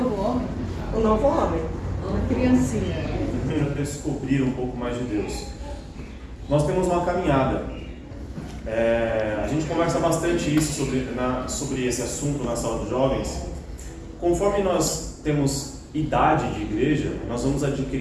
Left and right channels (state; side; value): identical; both; correlation 1.00